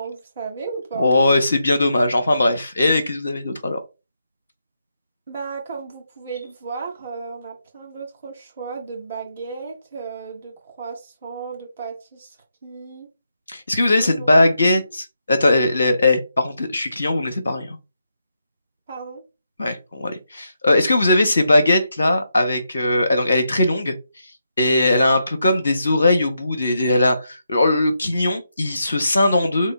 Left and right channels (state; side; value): inverted; both; correlation -0.83